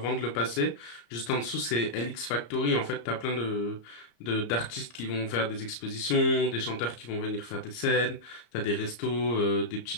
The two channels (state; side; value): late; right; 34 ms